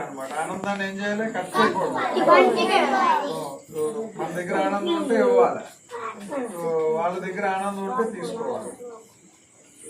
ఆనందాన్ని ఏం చేయాలి? కట్ చేయకూడదు. మన దగ్గర ఆనందం ఉంటే ఇవ్వాలి, వాళ్ళ దగ్గర ఆనందం ఉంటే తీసుకోవాలి.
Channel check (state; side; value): identical; both; correlation 1.00